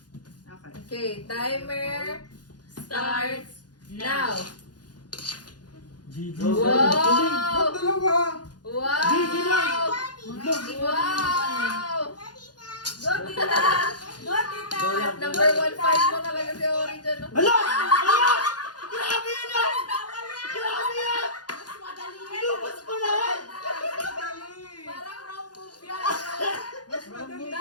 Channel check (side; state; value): right; late; 0.69 ms